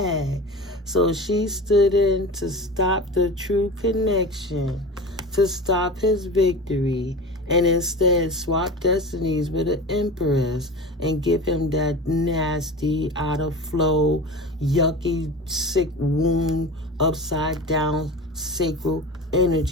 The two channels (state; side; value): normal; both; correlation 0.32